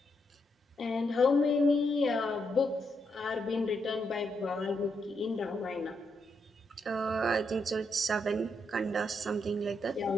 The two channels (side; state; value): both; normal; correlation 0.80